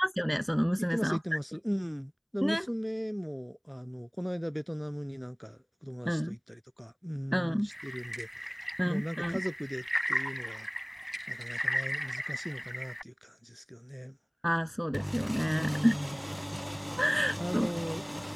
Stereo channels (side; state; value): both; identical; correlation 1.00